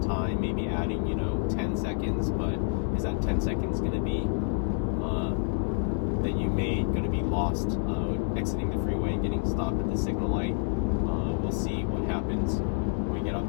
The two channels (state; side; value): silent; right; 59 dB below the other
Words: time, maybe adding 10 seconds, but is that 10 seconds going to be that you made going to be lost exiting the freeway and getting stopped at the signal light? We'll see what happens when we get